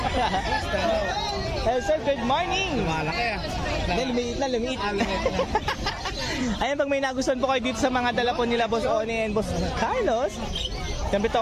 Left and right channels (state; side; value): identical; both; correlation 1.00